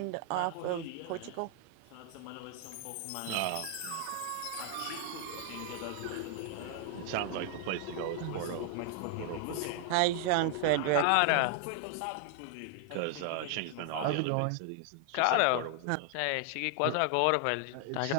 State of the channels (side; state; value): both; different; correlation 0.00